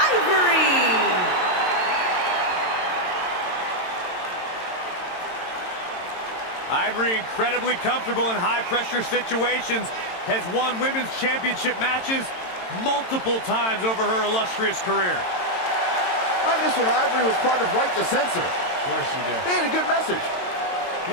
Ivory, incredibly comfortable in high-pressure situations, has won women's championship matches multiple times over her illustrious career. I miss when Ivory was part of Right to Censor. Of course you do. They had a good message.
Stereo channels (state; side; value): late; right; 22 ms